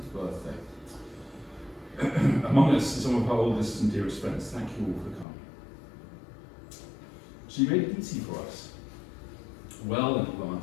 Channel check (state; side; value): drops out; right; at 5.2 s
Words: birthday. Among us are some of her oldest and dearest friends. Thank you all for coming. She made it easy for us, well in